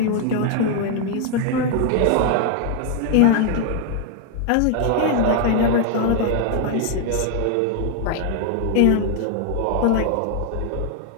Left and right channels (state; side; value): different; both; correlation 0.00